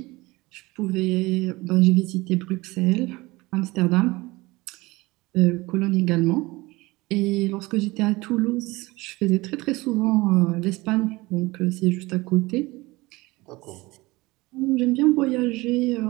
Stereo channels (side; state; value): left; quieter; 21.6 dB